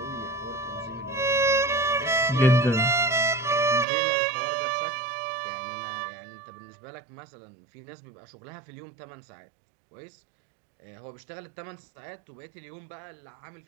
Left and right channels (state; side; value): drops out; left; at 3.9 s